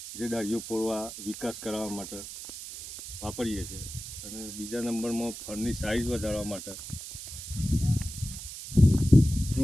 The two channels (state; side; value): noise; right; hiss, 10 dB below the sound